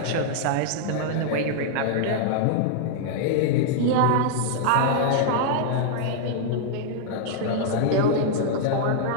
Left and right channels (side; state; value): both; different; correlation -0.01